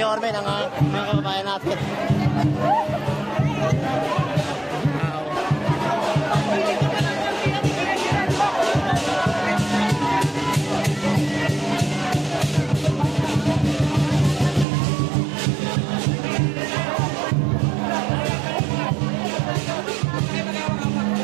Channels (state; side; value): drops out; left; at 14.7 s